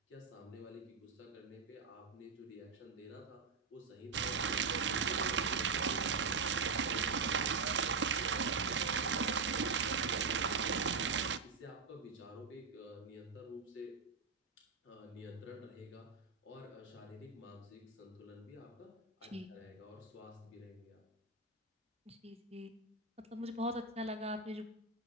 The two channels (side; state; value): left; quieter; 4.9 dB